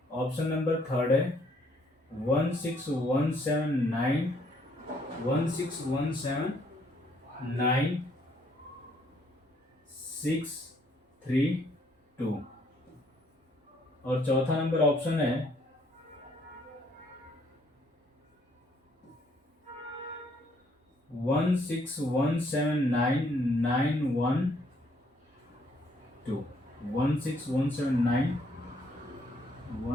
ऑप्शन नंबर थर्ड है 16179 632। और चौथा नंबर ऑप्शन है 16179 912।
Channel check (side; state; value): both; normal; correlation 0.67